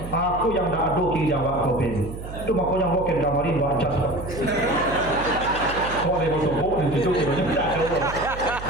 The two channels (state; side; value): noise; right; hum, 11 dB below the sound